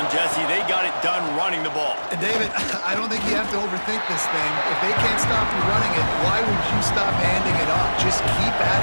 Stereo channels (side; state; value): both; inverted; correlation -1.00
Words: Jesse. They got it done running the ball. And David, I don't think you have to overthink this thing. If they can't stop you running it, why would you stop handing it off? Just keep at